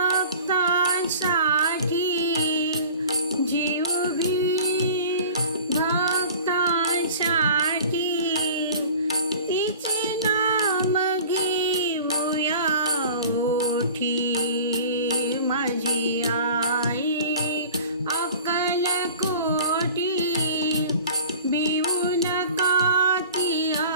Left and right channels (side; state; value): both; inverted; correlation -0.43